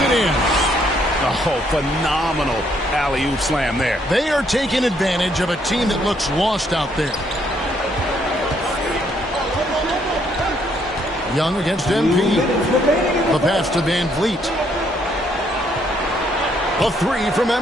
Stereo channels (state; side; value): normal; both; correlation 0.70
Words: in. Oh, phenomenal alley-oop slam there. They are taking advantage of a team that looks lost out there. Young against MP. The pass to VanVleet. A 3 from